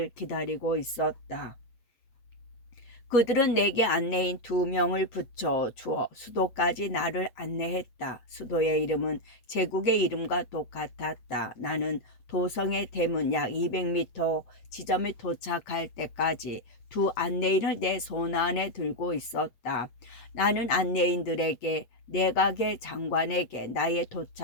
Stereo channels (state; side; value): late; right; 8.4 ms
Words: 기다리고 있었다. 그들은 내게 안내인 2명을 붙여 주어 수도까지 나를 안내했다. 수도의 이름은 제국의 이름과 똑같았다. 나는 도성의 대문 약 200m 지점에 도착할 때까지 두 안내인을 내 손 안에 들고 있었다. 나는 안내인들에게 내각의 장관에게 나의